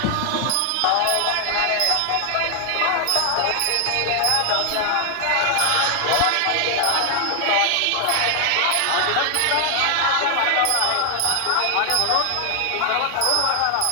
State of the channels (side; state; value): both; different; correlation 0.00